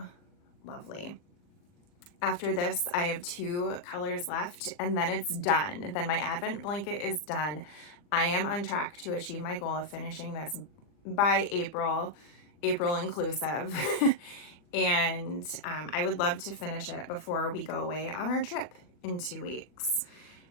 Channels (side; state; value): right; late; 40 ms